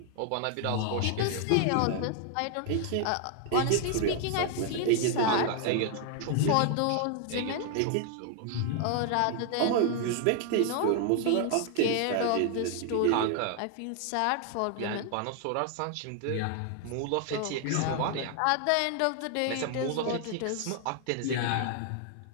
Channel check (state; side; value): different; both; correlation 0.00